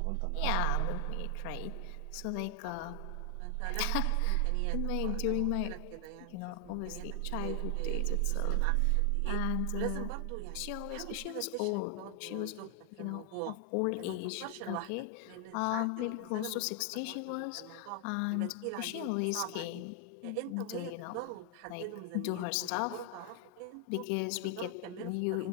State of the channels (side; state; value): both; different; correlation 0.00